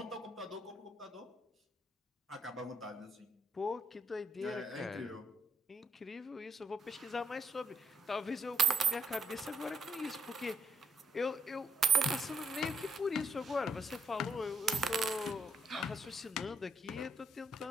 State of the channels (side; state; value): both; normal; correlation 0.72